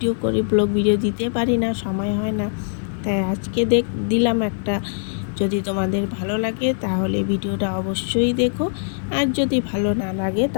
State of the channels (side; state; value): right; silent; digital silence